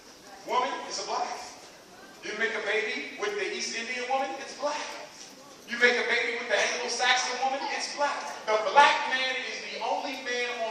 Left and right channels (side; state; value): both; identical; correlation 1.00